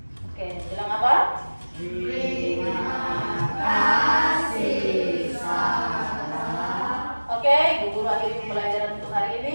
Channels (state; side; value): inverted; both; correlation -1.00